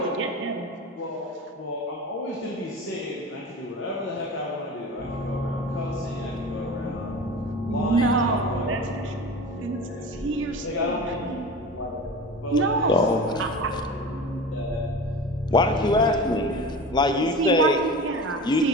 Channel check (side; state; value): both; normal; correlation 0.33